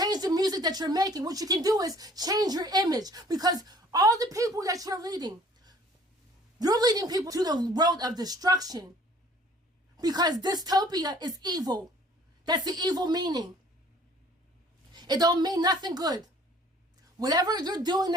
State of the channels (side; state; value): both; normal; correlation 0.54